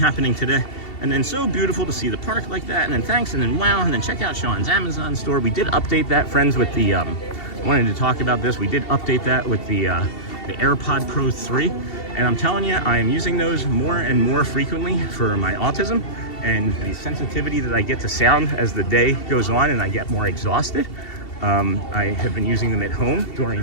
today. And then so beautiful to see the park like that. And then thanks, and then wow, and then check out Sean's Amazon store. We did update that, friends, with the I wanted to talk about this. We did update that with the AirPod Pro 3. And I'm telling you, I am using those more and more frequently for my autism and the sensitivity that I get to sound as the day goes on and I get more exhausted. I have been using them at home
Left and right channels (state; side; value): late; right; 2.7 ms